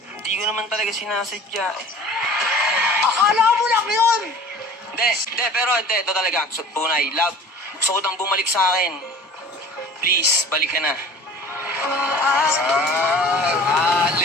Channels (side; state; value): both; normal; correlation 0.44